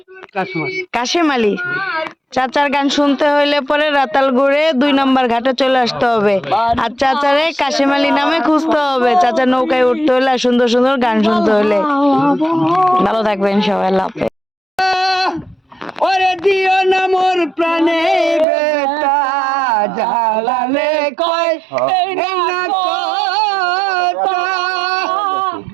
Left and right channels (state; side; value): drops out; left; at 18.4 s